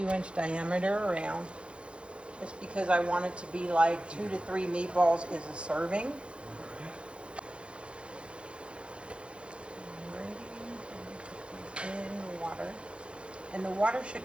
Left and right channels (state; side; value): late; left; 0.057 ms